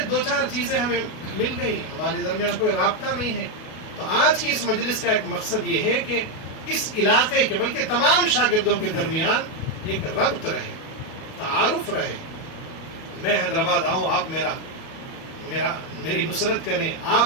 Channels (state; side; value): late; right; 37 ms